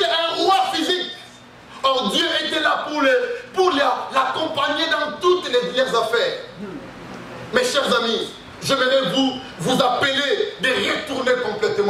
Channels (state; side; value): identical; both; correlation 1.00